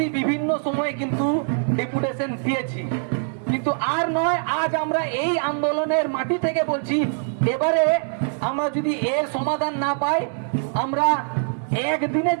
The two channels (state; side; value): silent; left; 63 dB below the other